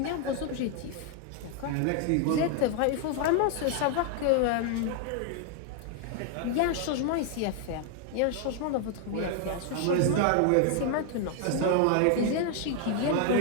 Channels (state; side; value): different; both; correlation 0.00